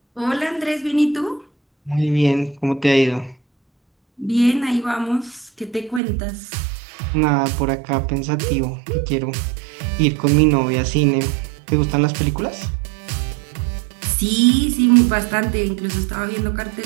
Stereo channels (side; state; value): left; drops out; at 6.0 s